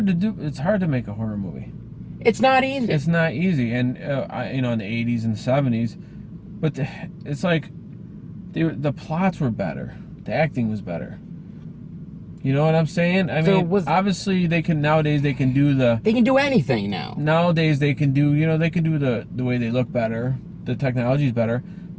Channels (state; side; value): identical; both; correlation 1.00